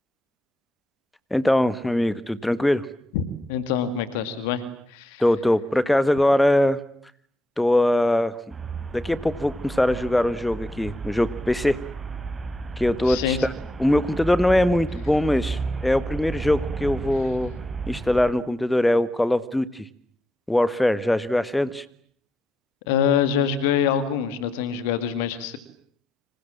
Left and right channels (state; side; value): normal; both; correlation 0.84